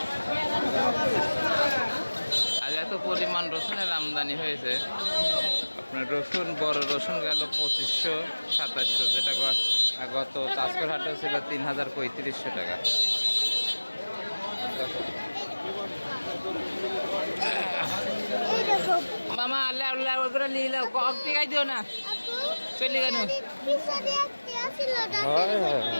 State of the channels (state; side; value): inverted; both; correlation -1.00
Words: আজ এত পরিমাণ রসুনের আমদানি হয়েছে আপনার রসুন বড় রসুন গেল 2500-2700 যেটা গত চাষকর হাটে ছিল 3035 টাকা মামা আল্লাহ আল্লাহ ওগুলো নিয়ে নাও কম টিকাই দিও না চলে গেল